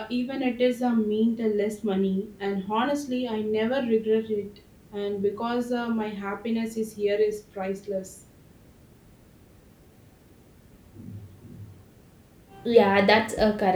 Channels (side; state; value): both; identical; correlation 1.00